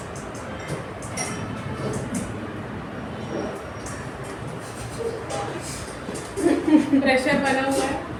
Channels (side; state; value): both; identical; correlation 1.00